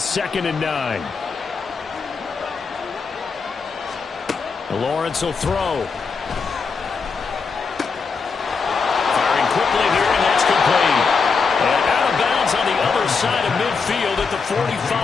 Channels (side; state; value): right; quieter; 5.1 dB